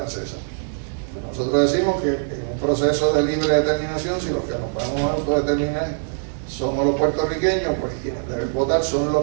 Nosotros decimos que en un proceso de libre determinación, si los que nos vamos a autodeterminar somos los puertorriqueños, pues quienes deben votar son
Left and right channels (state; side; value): silent; left; 64 dB below the other